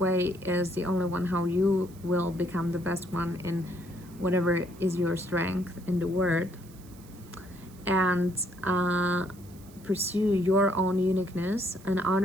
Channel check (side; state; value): right; noise; hiss, 24 dB below the sound